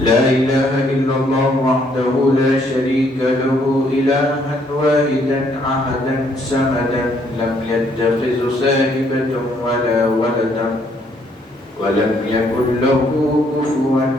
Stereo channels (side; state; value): both; normal; correlation 0.68